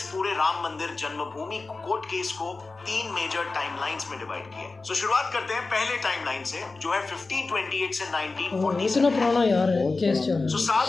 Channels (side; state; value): right; quieter; 3.7 dB